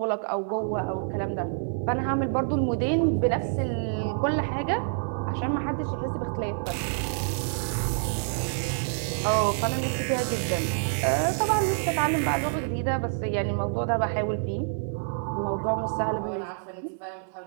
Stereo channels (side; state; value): left; silent; 60 dB below the other